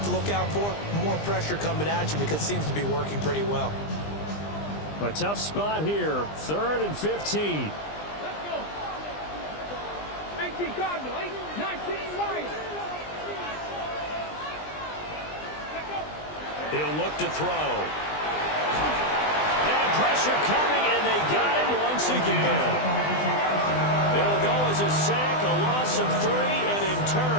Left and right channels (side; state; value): right; late; 20 ms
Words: to look out for? More pressure coming at you because it seems to be working pretty well. A tough spot here. 3rd and 15. Let's go. 18 Cardinal, 19 Lions. He'll look to throw. And pressure coming, and they got him once again. It'll go as a sack, a loss of 3, and in